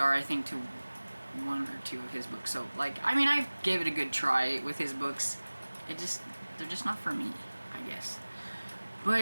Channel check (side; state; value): both; inverted; correlation -1.00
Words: I think, to 1 or 2 of his books. So like, I mean, I gave it a good try with his books. They're just not for me, I guess.